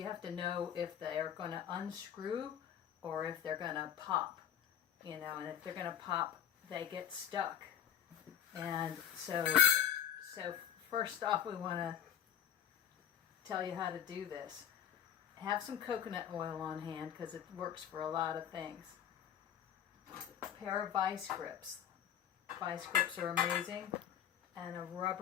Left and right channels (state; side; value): quieter; right; 9.5 dB